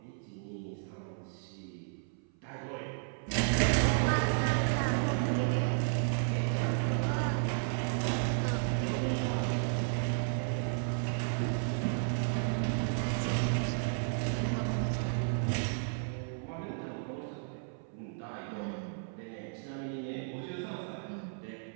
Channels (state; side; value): silent; left; 55 dB below the other